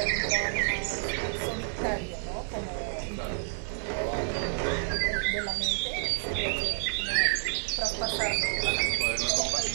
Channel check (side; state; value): left; silent; digital silence